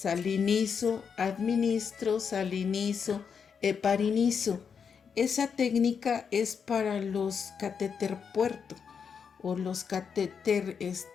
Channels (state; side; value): quieter; right; 6.5 dB